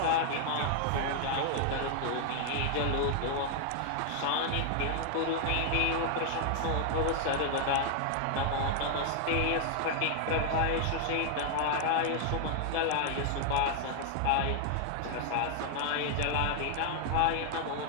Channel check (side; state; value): both; different; correlation 0.00